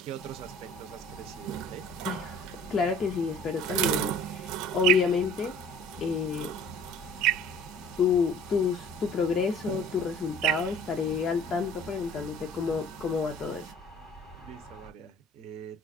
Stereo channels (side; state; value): both; normal; correlation 0.50